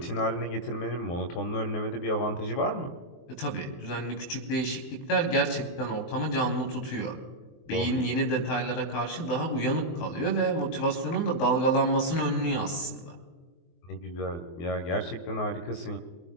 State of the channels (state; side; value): late; right; 23 ms